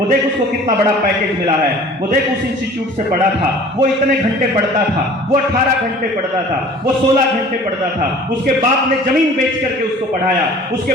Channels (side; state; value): both; normal; correlation 0.47